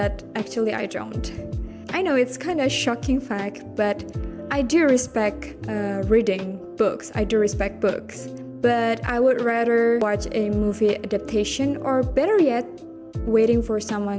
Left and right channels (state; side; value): identical; both; correlation 1.00